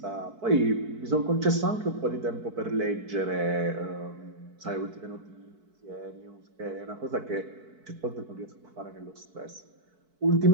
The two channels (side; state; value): left; late; 4.6 ms